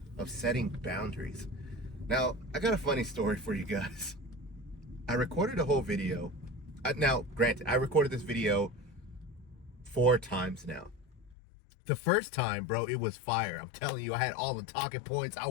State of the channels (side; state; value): right; drops out; at 11.4 s